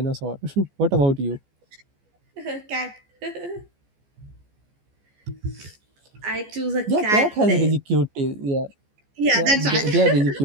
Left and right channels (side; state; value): left; late; 14 ms